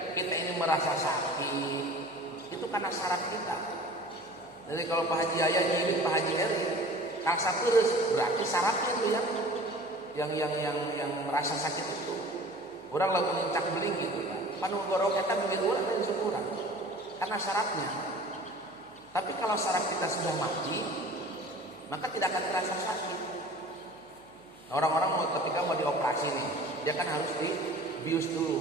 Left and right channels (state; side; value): noise; left; hum, 29 dB below the sound